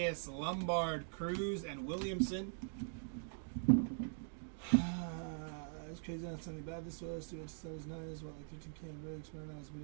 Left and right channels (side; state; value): left; silent; digital silence